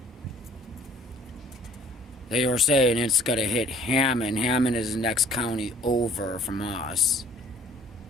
they were saying it's gonna hit Hammond. Hammond is the next county over from us.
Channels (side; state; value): both; normal; correlation 0.56